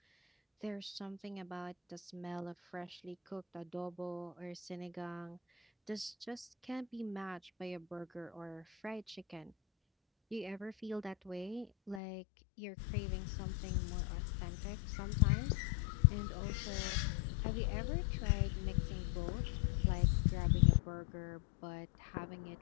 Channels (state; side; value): drops out; right; at 12.0 s